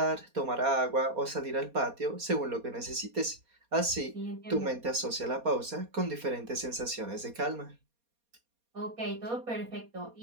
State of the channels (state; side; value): late; left; 4.2 ms